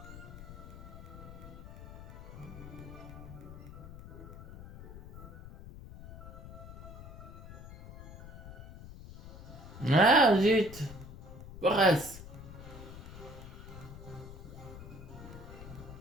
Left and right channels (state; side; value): noise; left; rumble, 13 dB below the sound